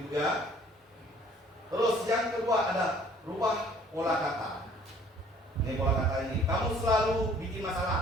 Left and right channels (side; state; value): both; normal; correlation 0.56